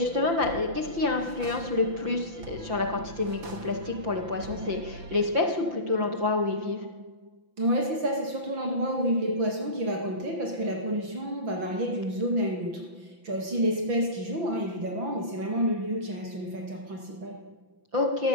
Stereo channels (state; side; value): late; left; 5.9 ms